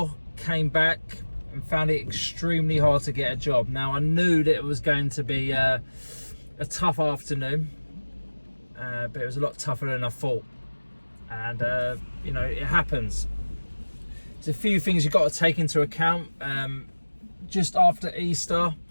came back and found it extremely hard to get a job. Now, I knew that it was going to be a tough afternoon, but it was a lot tougher than I thought. And you know, it happens. There's a few things you've got to take into account. Just after Easter,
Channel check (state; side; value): inverted; both; correlation -1.00